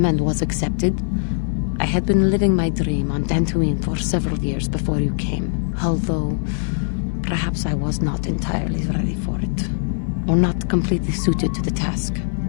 and was accepted. I had been living my dream on Dantooine for several years before you came, although perhaps I was not entirely ready for it, or not completely suited to the task.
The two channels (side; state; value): right; silent; digital silence